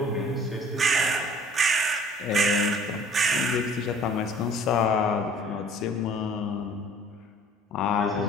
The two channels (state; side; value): normal; both; correlation 0.51